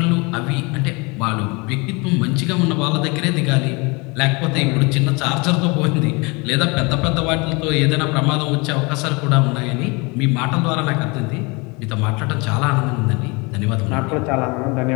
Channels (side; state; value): right; quieter; 27.8 dB